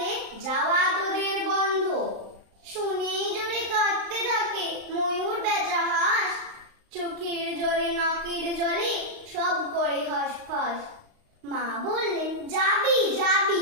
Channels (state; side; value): late; left; 35 ms